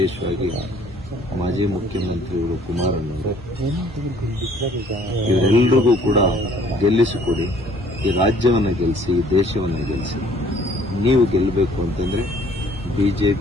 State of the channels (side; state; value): both; normal; correlation 0.58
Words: ಮಾಜಿ ಮುಖ್ಯಮಂತ್ರಿಗಳು ಕುಮಾರಣ್ಣವರು, ಇವರೆಲ್ಲರಿಗೂ ಕೂಡ ಗೆಲ್ಲಿಸಿಕೊಡಿ. ಈ ರಾಜ್ಯವನ್ನು ಗೆಲ್ಲಿಸಿ, ಈ ದೇಶವನ್ನು ಗೆಲ್ಲಿಸಿ. ನೀವು ಗೆಲ್ಲಬೇಕು ಅಂತಂದ್ರೆ